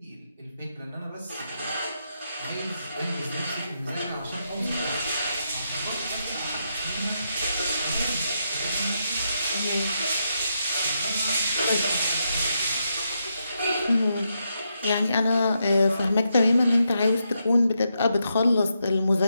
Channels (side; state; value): both; inverted; correlation -0.82